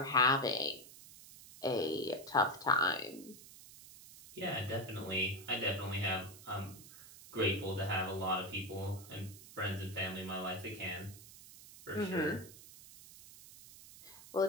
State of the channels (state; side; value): noise; right; hiss, 18 dB below the sound